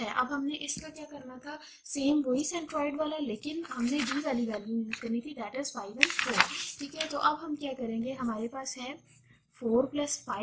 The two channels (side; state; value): both; identical; correlation 1.00